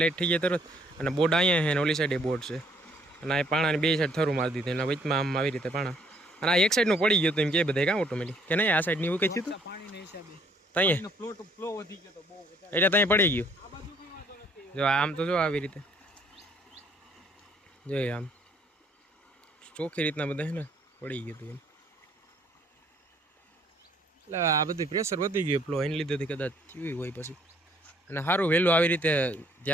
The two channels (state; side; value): normal; both; correlation 0.64